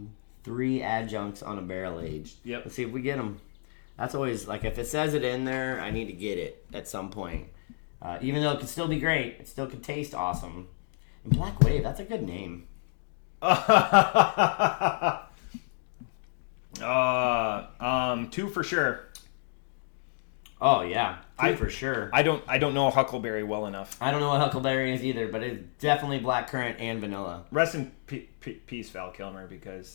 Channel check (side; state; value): right; silent; digital silence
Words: 3 adjuncts on a barrel aged. Yep. Let's see if we get them. That's always like if it says it in there, I need to get it at some point. Even though it could still be great, it still could taste awesome. And Black Wave, that's a good name. 2 for sure. Oh yeah, 2 for sure. I don't know Huckleberry well enough. I don't know what Huckleberry is either, but it's definitely blackcurrant and vanilla. Rest in peace, Val Kilmer,